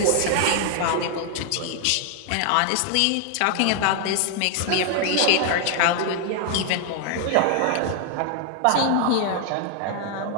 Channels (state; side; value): different; both; correlation 0.00